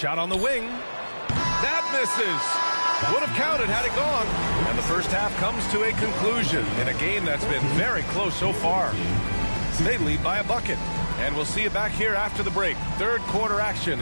on the wing. That misses. Would have counted had it gone. And the first half comes to a conclusion in a game that's been very close so far. They lead by a bucket. And we'll see you back here after the break. Third quarter action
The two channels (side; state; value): both; inverted; correlation -1.00